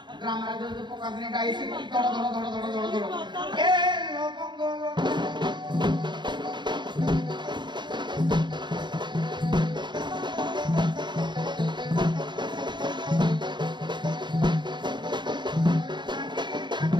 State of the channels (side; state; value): left; late; 0.22 ms